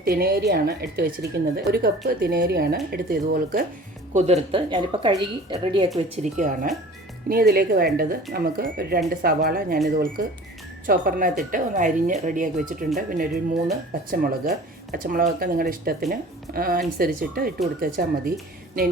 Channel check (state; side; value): normal; both; correlation 0.44